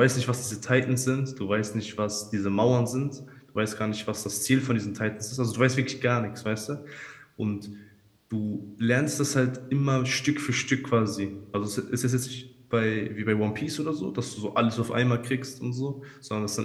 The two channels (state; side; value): identical; both; correlation 1.00